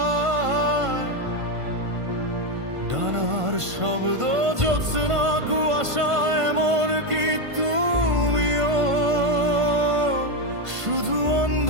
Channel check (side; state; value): left; late; 1.5 ms